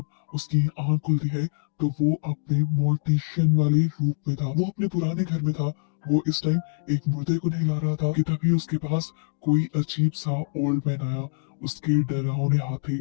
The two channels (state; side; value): silent; right; digital silence